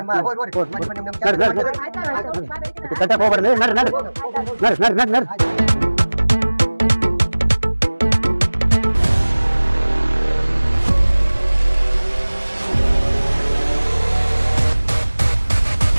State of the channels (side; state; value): both; inverted; correlation -1.00